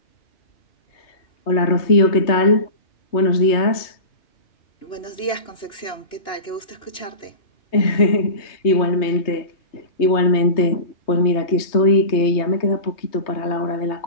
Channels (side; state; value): right; late; 3.2 ms